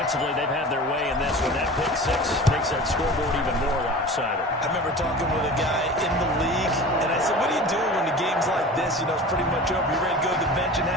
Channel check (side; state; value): both; normal; correlation 0.36